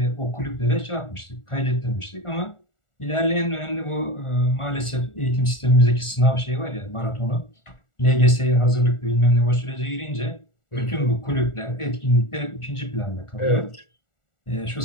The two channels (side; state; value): right; late; 1.4 ms